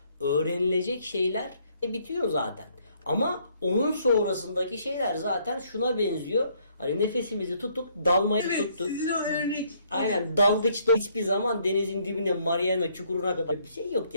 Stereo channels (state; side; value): inverted; both; correlation -0.67